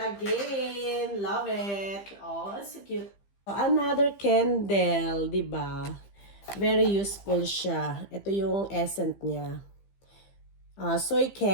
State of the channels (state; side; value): late; right; 15 ms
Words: Love it. Oh, it's so cute. Another candle, di ba? Very useful siya. Ito yung essence niya. Soy